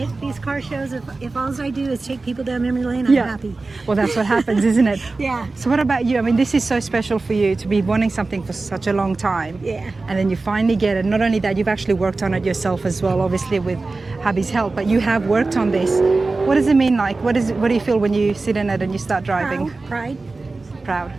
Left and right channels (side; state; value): left; quieter; 3.6 dB